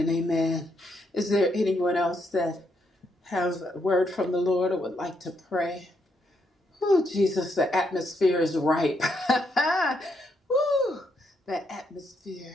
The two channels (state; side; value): normal; both; correlation 0.77